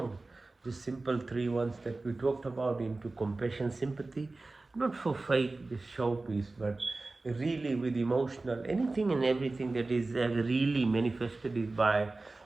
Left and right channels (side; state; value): left; quieter; 3.3 dB